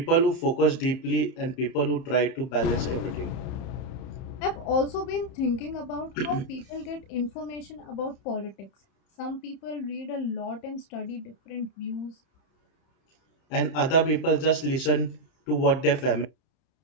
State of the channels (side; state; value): right; late; 31 ms